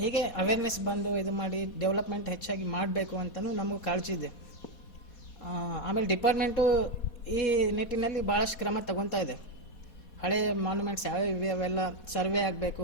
ಅವೇರ್ನೆಸ್ ಬಂದು ಇದು ಮಾಡಿ ಡೆವಲಪ್ಮೆಂಟ್ ಹೆಚ್ಚಾಗಿ ಮಾಡಬೇಕು ಅಂತಲೂ ನಮಗೂ ಕಾಳಜಿ ಇದೆ. ಆಮೇಲೆ ಡಿಪಾರ್ಟ್ಮೆಂಟು ಈ ನಿಟ್ಟಿನಲ್ಲಿ ಭಾಳಷ್ಟು ಕ್ರಮ ತಗೊತಾ ಇದೆ. ಹಳೆ ಮಾನ್ಯುಮೆಂಟ್ಸ್ ಯಾವ್ಯಾವ ಇವೆ ಅವೆಲ್ಲ ಸರ್ವೆ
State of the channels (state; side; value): late; right; 4.2 ms